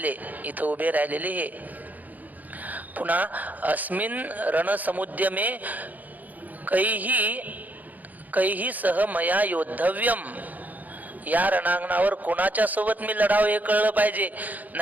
इथं उभे राहिलेले हे. पुन्हा अस्मिन रणसमुद्यमे कैही सह मया योद्धव्यम, या रणांगणावर कोणाच्या सोबत मी लढावं हे कळलं पाहिजे.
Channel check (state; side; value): late; left; 0.081 ms